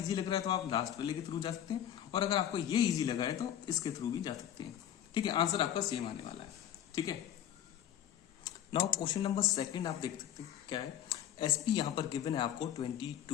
लग रहा है तो आप लास्ट वाले के थ्रू जा सकते हैं, और अगर आपको ये इजी लगा है तो इसके थ्रू भी जा सकते हैं, ठीक है। आंसर आपका सेम आने वाला है, ठीक है। नाउ क्वेश्चन नंबर 2 आप देख सकते हैं क्या है, एसपी यहां पर गिवन है आपको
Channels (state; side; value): quieter; right; 10.8 dB